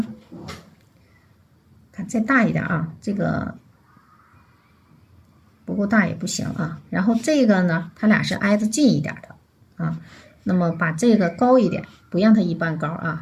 看再大一点啊，这个不够大也不行啊。然后这个呢，它俩是挨着近一点的啊，那么把这个高一点，不让它一般高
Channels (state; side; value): identical; both; correlation 1.00